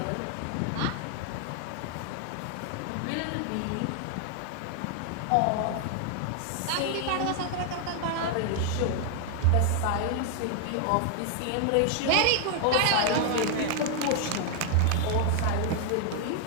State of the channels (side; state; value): both; different; correlation 0.00